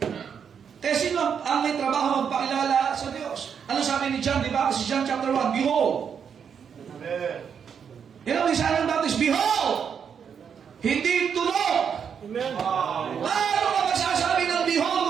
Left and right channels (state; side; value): quieter; left; 7.3 dB